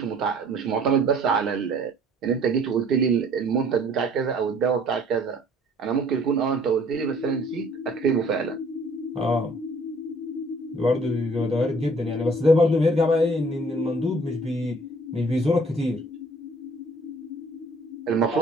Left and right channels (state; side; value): normal; both; correlation 0.56